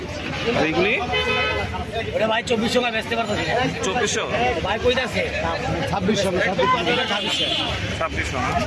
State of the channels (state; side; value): identical; both; correlation 1.00